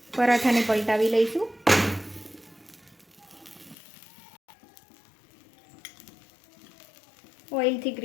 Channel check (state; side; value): drops out; right; at 3.8 s